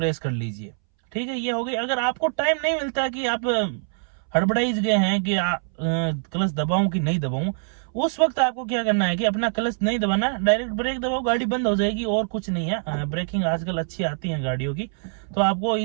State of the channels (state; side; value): silent; left; 62 dB below the other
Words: कर लीजिए। ठीक है, ये हो गई। अगर आपको टाइम नहीं मिलता है कि आप हड़बड़ाइज गए हैं कि क्लच दबाऊं कि नहीं दबाऊं, उस वक्त आपको क्या करना है कि अपना क्लच नहीं दबाना, डायरेक्ट ब्रेक दबाओ, गाड़ी बंद हो जाएगी और कुछ नहीं है। ब्रेकिंग आजकल अच्छी आती है गाड़ियों की, तो आपको